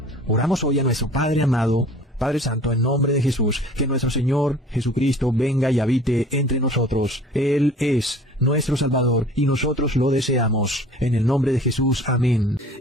Oramos hoy a nuestro Padre amado, Padre Santo, en nombre de Jesús, que nuestro Señor Jesucristo venga y habite entre nosotros. Él es nuestro Salvador y nosotros lo deseamos. En el nombre de Jesús, amén.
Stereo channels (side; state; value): both; normal; correlation 0.47